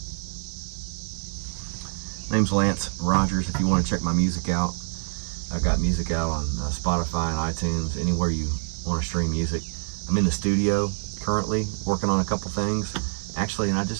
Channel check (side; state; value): left; silent; 59 dB below the other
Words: Name's Lance Rogers. If you want to check my music out, I got music out on Spotify and iTunes, anywhere you want to stream music. I'm in the studio currently working on a couple things, actually, and I